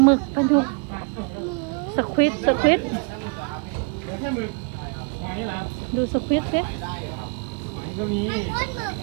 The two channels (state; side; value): quieter; left; 36.5 dB